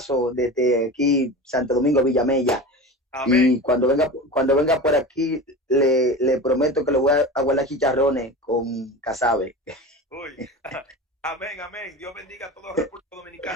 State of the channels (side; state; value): both; normal; correlation 0.30